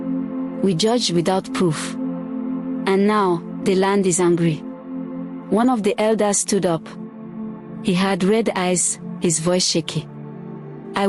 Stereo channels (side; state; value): both; identical; correlation 1.00